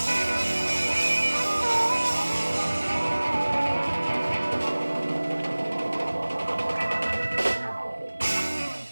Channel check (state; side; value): inverted; both; correlation -1.00